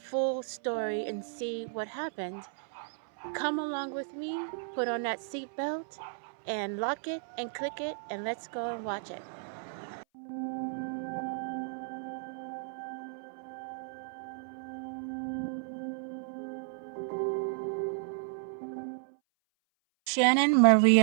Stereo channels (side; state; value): left; silent; 56 dB below the other